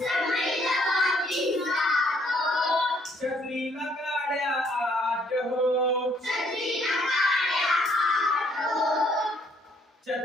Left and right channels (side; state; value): both; normal; correlation 0.66